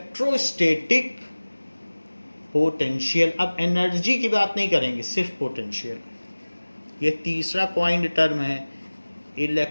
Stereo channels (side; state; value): both; inverted; correlation -1.00